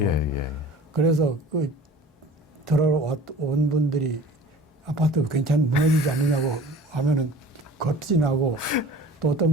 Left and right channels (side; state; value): both; normal; correlation 0.43